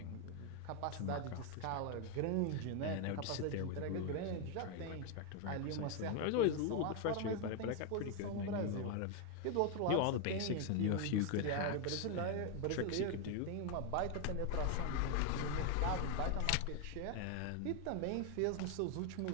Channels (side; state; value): both; different; correlation 0.01